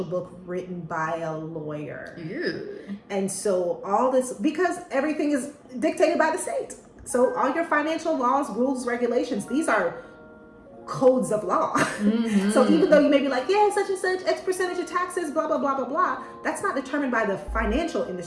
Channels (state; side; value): identical; both; correlation 1.00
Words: book written by a lawyer. Ew. And so all this, because everything is dictated by the state. So all your financial laws, rules, regulations, these are codes of law. So even though you may be like, yeah, such and such, X percentage of taxes, blah, blah, blah, blah, blah, that's not determined by the financial